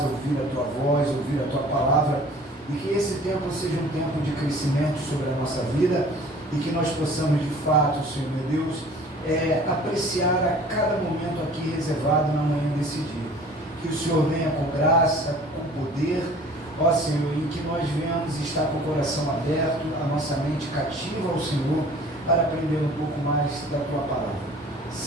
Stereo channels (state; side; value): normal; both; correlation 0.48